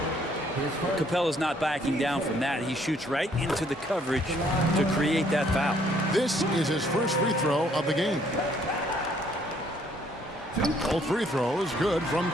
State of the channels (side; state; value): both; normal; correlation 0.65